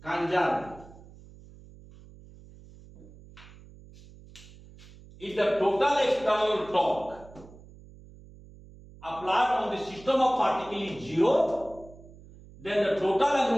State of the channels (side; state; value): right; noise; hum, 21 dB below the sound